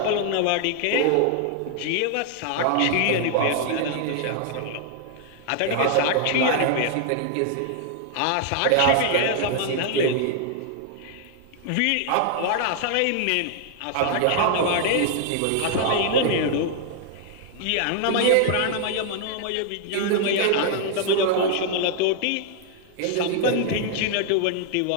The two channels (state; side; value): different; both; correlation 0.00